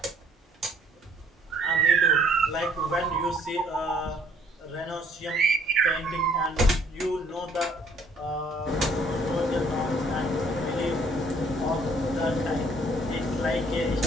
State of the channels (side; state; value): both; normal; correlation 0.61